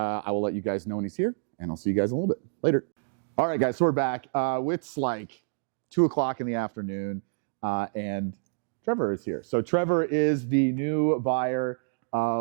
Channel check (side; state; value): left; silent; digital silence